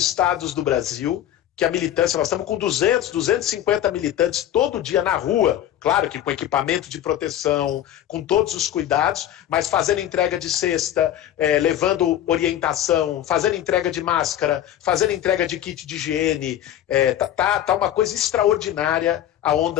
do Brasil, que a militância, nós estamos com 250 militantes todo dia na rua, claro que com equipamento de proteção, com todos os cuidados, mas fazendo entrega de cesta, levando orientação, fazendo entrega de máscara, fazendo entrega de kit de higiene. Tá uma coisa extraordinária a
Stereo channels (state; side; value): quieter; right; 11.6 dB